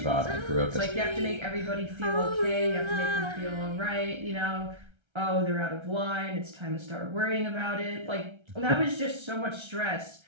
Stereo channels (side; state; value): left; late; 1.3 ms